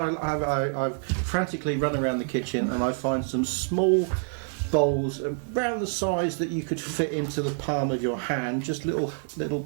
run around the kitchen and I find some small bowls around the size that you could fit into the palm of your hand. Just little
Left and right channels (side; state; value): left; silent; digital silence